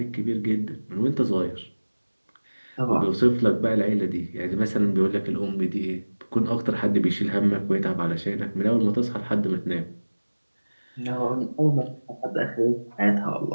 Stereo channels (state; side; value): inverted; both; correlation -1.00